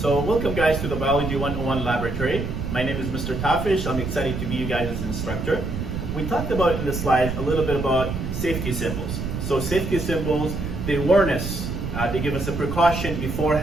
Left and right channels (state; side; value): noise; right; rumble, 4 dB below the sound